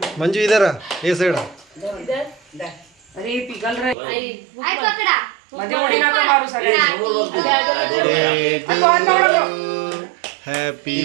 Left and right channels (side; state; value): left; drops out; at 4.0 s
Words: मंजू इधर आ ये साइड अरे पिकल रे पकडा मध्ये उडी नका मारू happy